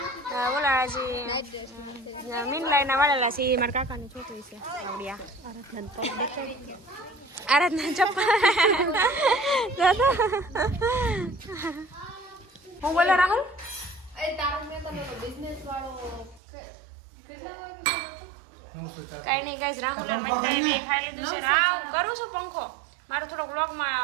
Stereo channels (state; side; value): drops out; left; at 16.4 s